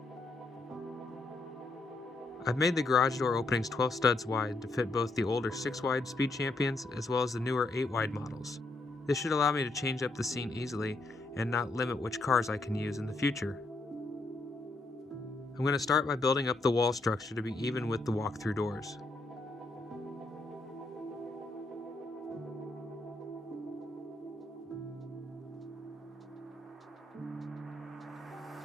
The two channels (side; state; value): right; quieter; 3.1 dB